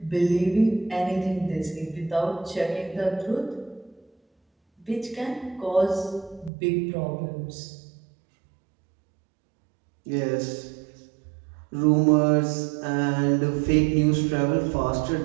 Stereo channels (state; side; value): drops out; left; at 6.5 s